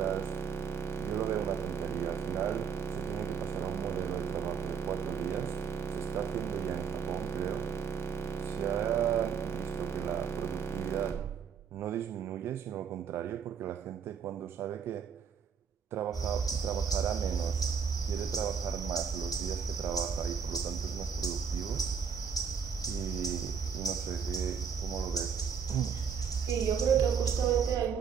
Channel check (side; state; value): left; quieter; 6.8 dB